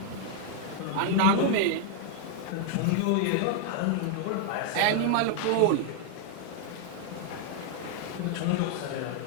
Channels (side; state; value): both; different; correlation 0.00